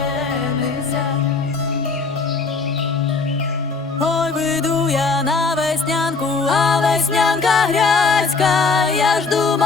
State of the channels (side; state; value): right; quieter; 4.5 dB